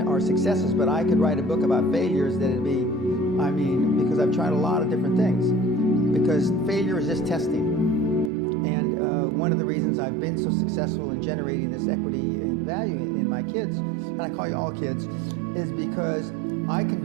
are successes, but I could write a book about failures that'd be, because I've tried a lot of different things, because failure is just testing. And one of the reasons I've been so successful in generating this equity and value in my kids, and I call you all kids, is because I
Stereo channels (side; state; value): left; drops out; at 8.3 s